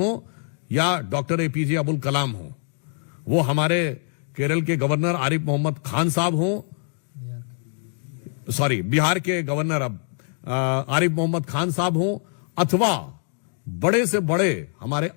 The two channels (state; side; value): silent; right; digital silence